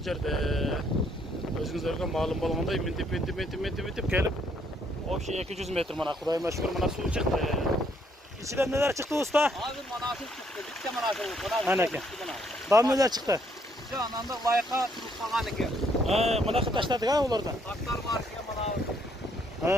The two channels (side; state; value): both; normal; correlation 0.69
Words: jerde. Özüңүzдарга маалым болгондой мынтип келип, вообще 200 метр мына Кудайыма шүгүр мына суу чыкты. İçinden neler çıktı usta? Hazır manasır çıktı. Bitti manasır. Ana ki. Daha neler çıktı? Şu anında layıka turup kalan ki. Mına taşladık ha onlardan. Taşlar var ki manasır.